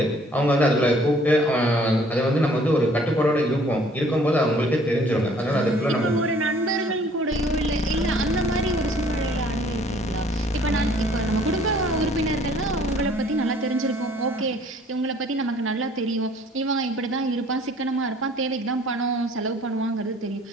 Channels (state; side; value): normal; both; correlation 0.57